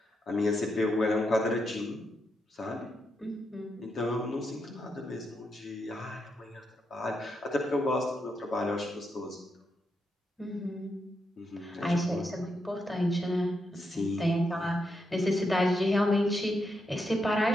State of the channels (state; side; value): normal; both; correlation 0.83